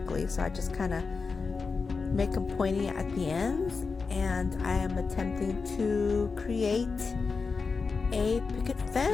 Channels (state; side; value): quieter; right; 4.7 dB